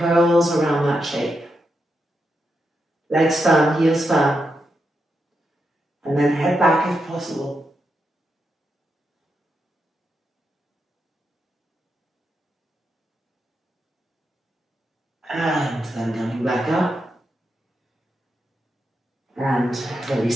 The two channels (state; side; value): normal; both; correlation 0.85